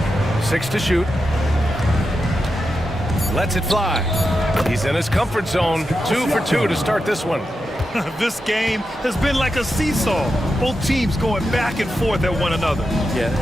6 to shoot. Lets it fly. He's in his comfort zone. 2 for 2 to start this one. This game has been like a seesaw. Both teams going back and forth at one another. Yeah,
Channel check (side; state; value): both; normal; correlation 0.88